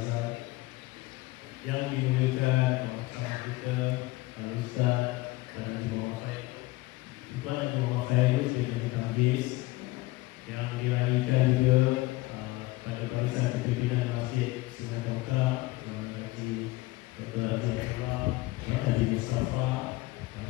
yang dimuliakan bersama kita Al-Ustaz Tuan Haji Muhammad Faid. Tuan Haji Muhammad Faid sebagai Majlis yang diraihkan juga pada barisan kepimpinan Masjid Sungai Tongkang, Tuan Haji Dr. Haji Abdullah, Tuan Haji Mustafa,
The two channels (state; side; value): quieter; right; 19.8 dB